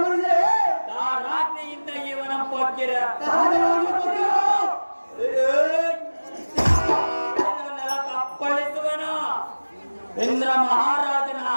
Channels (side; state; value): both; inverted; correlation -1.00